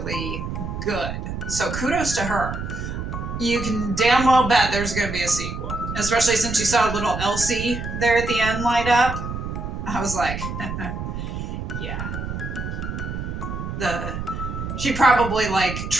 good. So kudos to her. You can damn well bet there's going to be a sequel. Especially since you saw little Elsie there at the end light up. I was like, yeah. She probably like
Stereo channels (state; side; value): noise; right; rumble, 5 dB below the sound